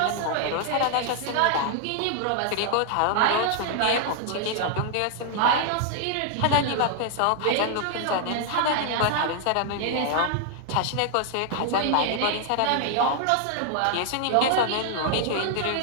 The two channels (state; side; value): different; both; correlation 0.00